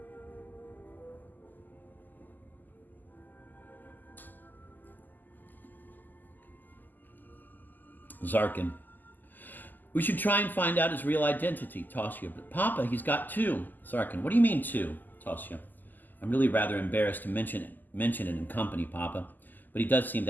Zarkin. We should try and find out his real identity, Tosya. But Papa, he's got two. Zarkin. What do you mean two? Tosya. I'm really rather embarrassed to mention it in company, Papa. But he does seem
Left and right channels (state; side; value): late; right; 0.086 ms